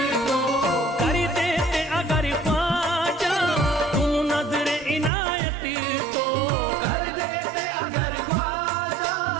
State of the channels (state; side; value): drops out; left; at 5.1 s